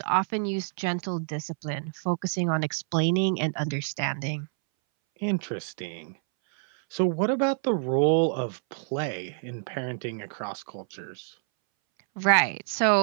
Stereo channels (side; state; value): left; silent; 60 dB below the other